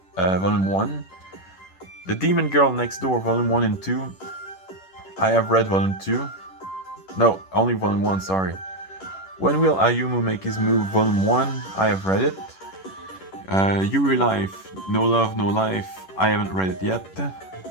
Volume 1. The Demon Girl Next Door, Volume 1 and 2, I have read Volume 2. No, only Volume 1, sorry. When Will Ayumu Make His Move, Volume 1, I have read it. Yuri Life, No Love, No Life, I haven't read it yet.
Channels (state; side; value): late; right; 11 ms